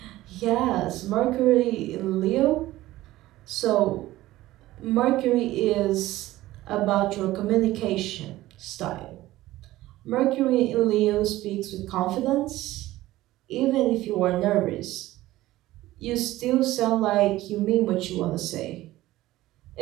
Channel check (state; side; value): quieter; left; 16.4 dB